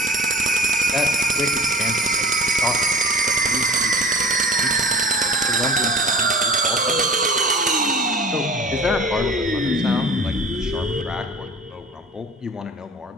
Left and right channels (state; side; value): normal; both; correlation 0.42